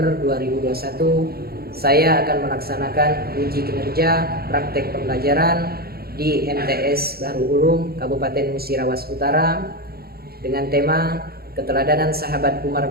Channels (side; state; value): left; late; 0.45 ms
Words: 2021, saya akan melaksanakan uji kinerja praktek pembelajaran di MTS Bahru Ulum Kabupaten Musirawas Utara dengan tema keteladanan sahabat Umar